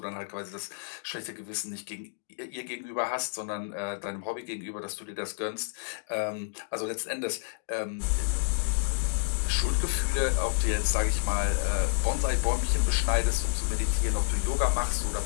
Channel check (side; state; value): right; silent; digital silence